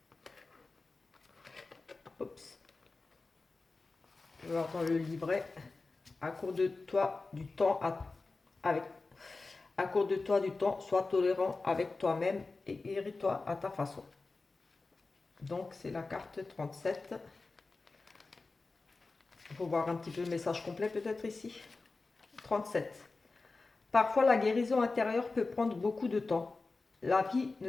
Oups. Je vais voir dans le livret. Accorde-toi du temps avec. Accorde-toi du temps, sois tolérant avec toi-même et dirige-toi à ta façon. Donc c'est la carte 37. Il faut voir un petit peu le message complet peut-être ici. 37. Parfois la guérison intérieure peut prendre beaucoup de temps. La vie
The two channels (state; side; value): quieter; right; 3.7 dB